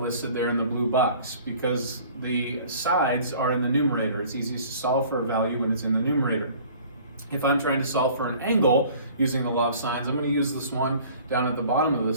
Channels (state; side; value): inverted; both; correlation -0.50